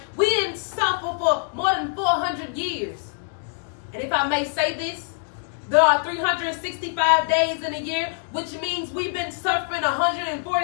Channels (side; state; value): right; silent; 62 dB below the other